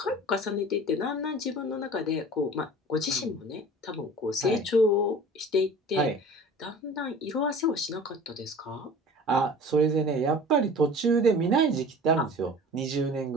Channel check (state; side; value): normal; both; correlation 0.41